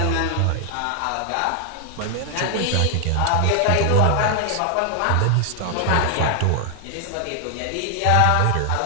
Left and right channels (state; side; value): different; both; correlation 0.00